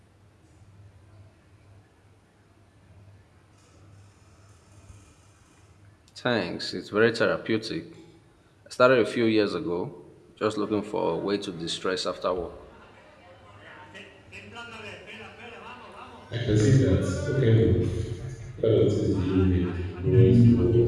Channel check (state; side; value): identical; both; correlation 1.00